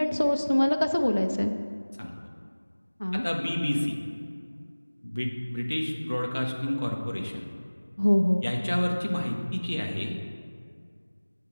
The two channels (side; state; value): both; inverted; correlation -1.00